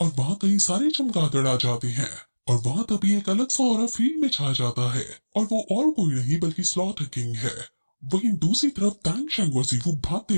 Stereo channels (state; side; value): inverted; both; correlation -1.00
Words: वहाँ कई सारे चमगादड़ आ जाते हैं और वहाँ तभी एक अलग सा ऑरा फील्ड में छा जाता है और वो और कोई नहीं बल्कि स्लॉटर किंग है। वहीं दूसरी तरफ टैंग शैंग और जीवू भागते